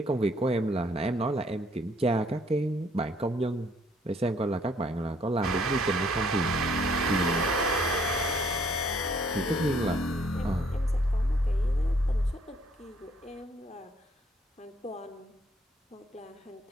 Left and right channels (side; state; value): both; normal; correlation 0.65